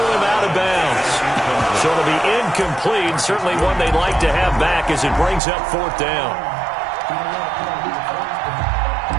him out of bounds. So it'll be incomplete, certainly one they'd like to have back as it brings up 4th down.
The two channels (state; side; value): drops out; left; at 5.4 s